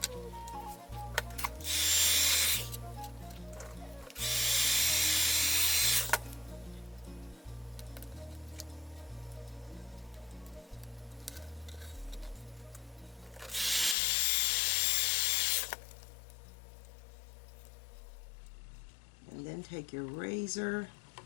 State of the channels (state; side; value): drops out; right; at 14.0 s